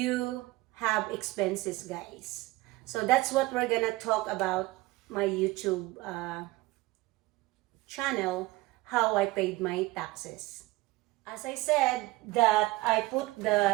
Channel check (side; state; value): left; quieter; 19.8 dB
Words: have expenses, guys. So that's what we're gonna talk about my YouTube channel, how I paid my taxes. As I said that I put